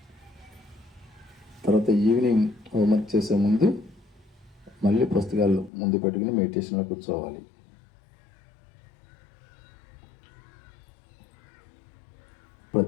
తర్వాత ఈవినింగ్ హోంవర్క్ చేసే ముందు మళ్ళీ పుస్తకాలు ముందు పెట్టుకుని మెడిటేషన్లో కూర్చోవాలి.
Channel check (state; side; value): drops out; right; at 5.7 s